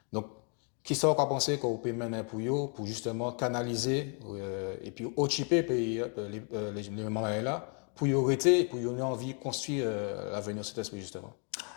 Donc, qui sont qu'on penser qu'on peut mener pour justement canaliser et puis occuper les moments là pour y arrêter, pour y avoir envie de construire l'avenir de cet esprit justement.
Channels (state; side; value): quieter; right; 39.7 dB